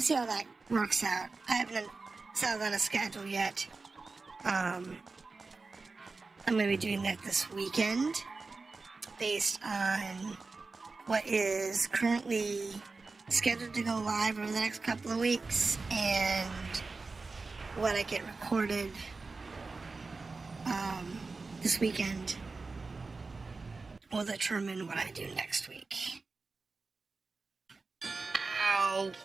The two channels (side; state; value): left; quieter; 3.9 dB